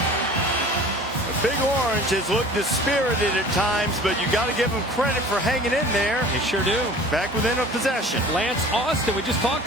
Big Orange has looked dispirited at times, but you got to give him credit for hanging in there. They sure do. Back within a possession. Lance Austin, we just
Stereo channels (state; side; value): normal; both; correlation 0.44